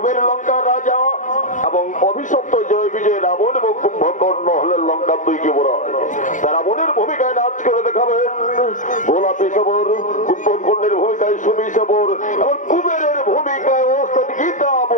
লঙ্কা রাজা এবং অভিশপ্ত জয় বিজয় রাবণ এবং কুম্ভকর্ণ হলেন লঙ্কা দুই যুবরাজ। রাবণের ভূমিকায় নাচ করে দেখাবেন গোলাপী সবর, কুম্ভকর্ণের ভূমিকায় সুমি সবর এবং কুবেরের ভূমিকায় ওস্তাদ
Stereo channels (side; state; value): right; late; 0.37 ms